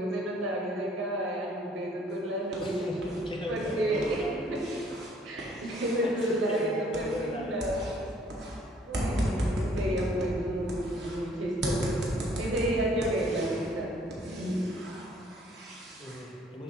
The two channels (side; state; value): both; normal; correlation 0.61